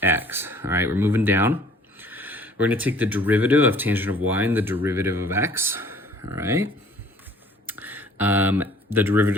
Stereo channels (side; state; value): both; normal; correlation 0.54